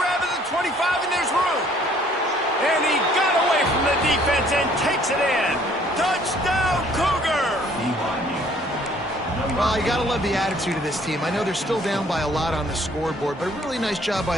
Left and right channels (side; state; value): both; normal; correlation 0.60